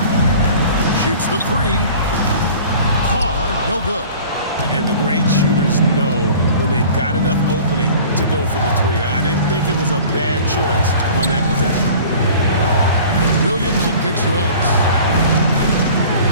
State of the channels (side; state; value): both; inverted; correlation -0.45